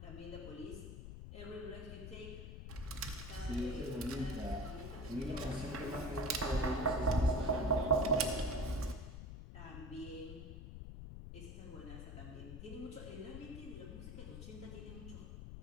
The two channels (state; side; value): noise; left; rumble, 9 dB below the sound